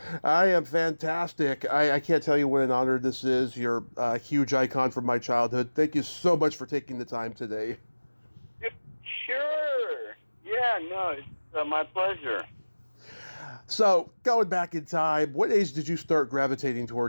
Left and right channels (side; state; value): both; inverted; correlation -1.00